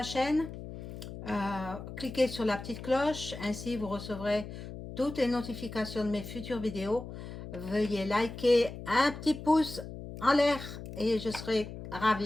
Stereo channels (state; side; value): noise; left; hum, 11 dB below the sound